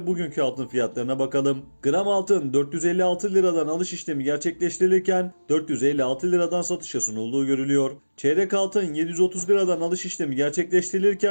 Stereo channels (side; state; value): both; inverted; correlation -1.00